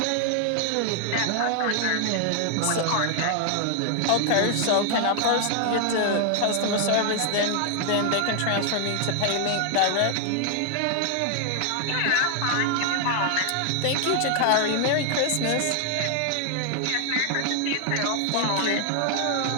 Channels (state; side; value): different; both; correlation 0.00